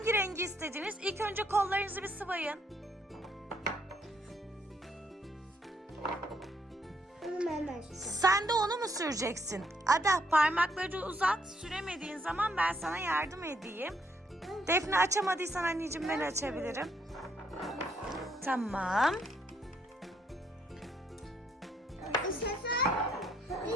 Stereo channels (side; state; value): both; normal; correlation 0.72